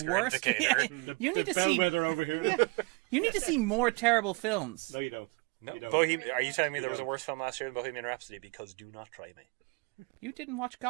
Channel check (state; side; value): quieter; left; 29.2 dB